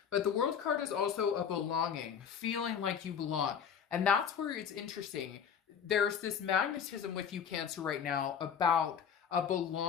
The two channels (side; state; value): right; quieter; 7.6 dB